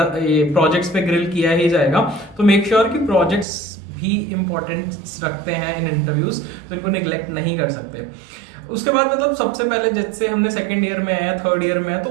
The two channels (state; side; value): drops out; left; at 3.5 s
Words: प्रोजेक्ट्स पे ग्रिल किया ही जाएगा, तो मेक श्योर कि प्रोजेक्ट्स भी इंपॉर्टेंस रखते हैं इन इंटरव्यूज, तो इनको निगलेक्ट नहीं कर सकते। उसके बाद मतलब सबसे पहले जैसे हमने सेकंड ईयर में है, थर्ड ईयर में है, तो